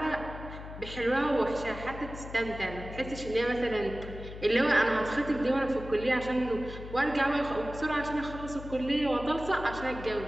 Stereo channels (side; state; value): left; noise; hum, 11 dB below the sound